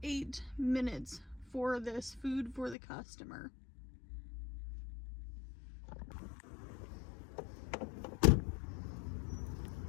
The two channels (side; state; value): right; drops out; at 2.8 s